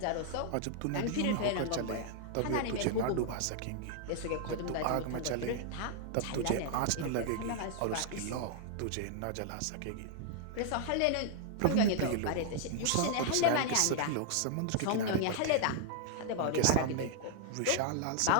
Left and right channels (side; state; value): both; different; correlation 0.00